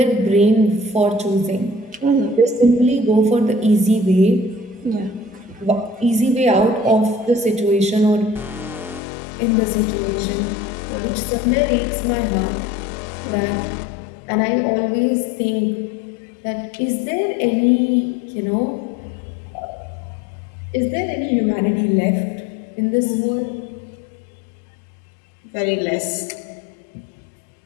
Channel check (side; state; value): right; drops out; at 9.0 s